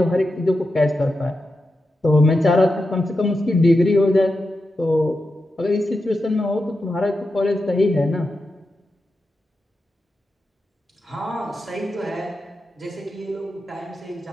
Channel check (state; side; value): normal; both; correlation 0.89